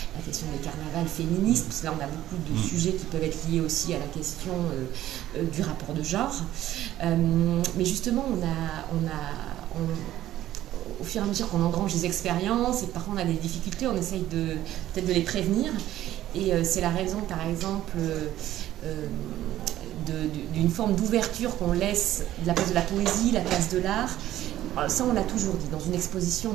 la question des carnavals féministes, parce que là, on a beaucoup de sujets qui peuvent être liés aussi à la question du rapport de genre. Mais justement, au fur et à mesure qu'on engrange des expériences et parfois on a des difficultés, on essaye peut-être de les prévenir. Et c'est la raison, par exemple, d'une forme d'ouverture qu'on laisse la place de la poésie, la place de l'art. Ça, on l'a toujours dit. Dans une exposition, on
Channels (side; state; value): left; quieter; 13.5 dB